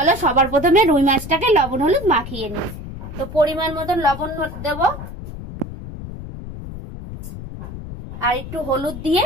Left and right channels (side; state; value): left; noise; rumble, 10 dB below the sound